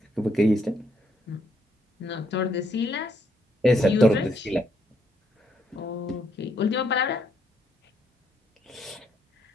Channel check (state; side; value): normal; both; correlation 0.73